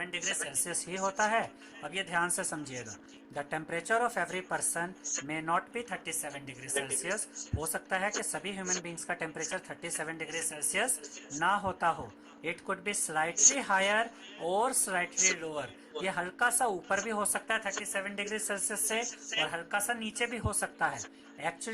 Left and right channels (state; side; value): identical; both; correlation 1.00